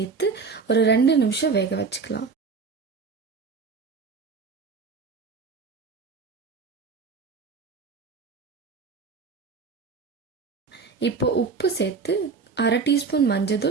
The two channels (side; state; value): left; quieter; 4.9 dB